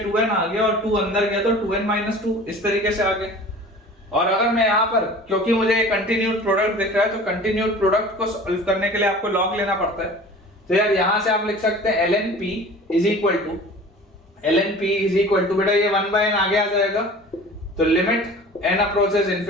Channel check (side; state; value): both; normal; correlation 0.42